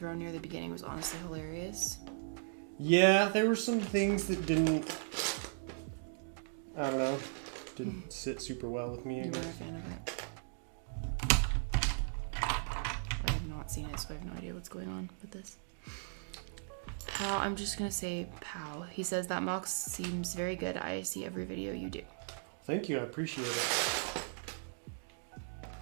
near the beginning was honestly hilarious. Yeah, there were some things that didn't sit super well with me. You were a fan of it. I have not seen it, so I have no idea what's going on with this. Pow, I'm just gonna say Pow. He says that mock seems very good. I see every video you do. Thank you, I appreciate it.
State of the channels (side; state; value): left; silent; digital silence